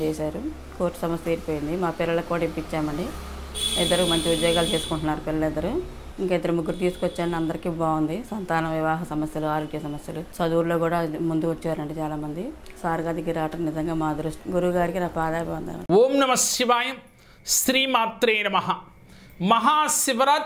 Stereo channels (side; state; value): both; identical; correlation 1.00